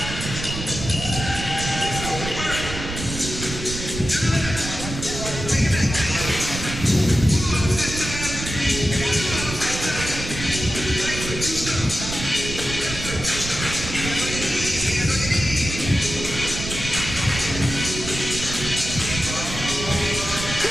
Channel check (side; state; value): right; noise; rumble, 7 dB below the sound